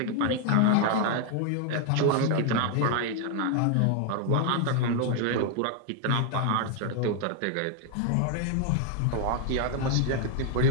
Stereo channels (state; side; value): different; both; correlation 0.01